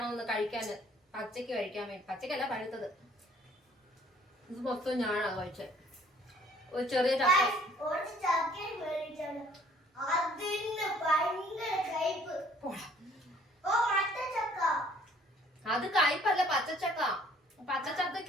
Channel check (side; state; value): both; normal; correlation 0.58